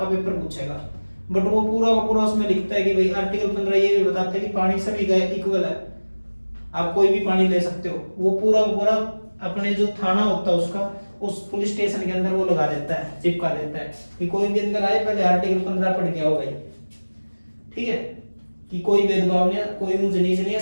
पेपर पूछेगा, बट वो पूरा का पूरा उसमें लिखता है कि भाई आर्टिकल 15 ये भी बताता है कि पानी सभी का इक्वल है, आप कोई भी पानी ले सकते हो। वो पूरा का पूरा अपने जो थाना होता है उसका, उस पुलिस स्टेशन के अंदर वो लगा देता है, चिपका देता है कि कोई भी अंदर आए पहले आर्टिकल 15 पढ़ के आओ भाई। ठीक है, कि कोई भेदभाव नहीं है, कोई ऊंच नीच नहीं है,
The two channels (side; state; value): both; inverted; correlation -1.00